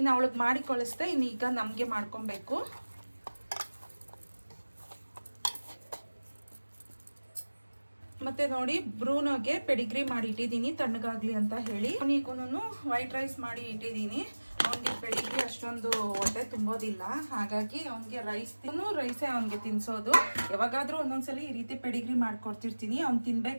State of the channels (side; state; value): both; inverted; correlation -1.00